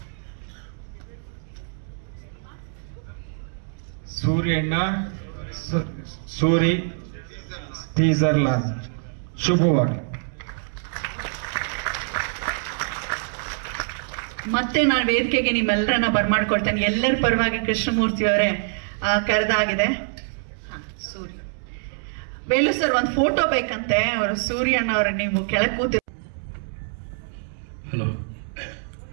ಸೂರ್ಯಣ್ಣ Suri teaser launch ಶುಭವಾಗಿ. ಮತ್ತೆ ನಾನು ವೇದಿಕೆಗೆ ನಿಮ್ಮೆಲ್ಲರನ್ನ ಬರ್ಮಾಡ್ಕೊಳ್ತೇನೆ. ಎಲ್ಲರ ಪರವಾಗಿ ಕೃಷ್ಣಮೂರ್ತಿ ಅವರೇ ಕರೆದಾಗಿದೆ. ಸೂರ್ಯ ವೇಲು ಸರ್ ಒಂದು ಫೋಟೋ ಬೇಕಂತೆ. ಅವರು ಸೂರ್ಯಣ್ಣ ಅವರ ನೀವು ಕೆಳಗೆ ಕೂತಿ. ಹಲೋ,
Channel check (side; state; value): left; silent; 62 dB below the other